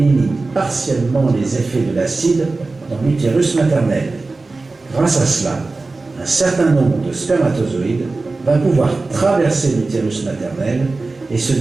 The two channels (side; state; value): left; quieter; 3.6 dB